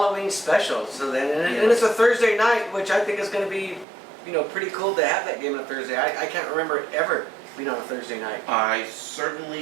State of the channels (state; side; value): drops out; left; at 3.9 s